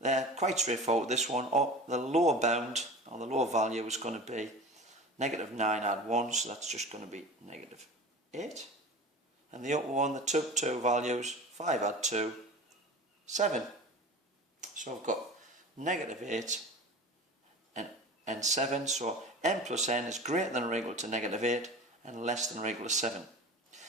They're quite straightforward, this one. The lower bound, or the lower value, is going to be negative 9 add 1, so that's just going to be negative 8. And the upper one, the two values, 5 add 2, 7. So I've got negative 8 and 7, so m plus n is greater than or equal to negative 8 and less than or equal to 7.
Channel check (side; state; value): both; normal; correlation 0.35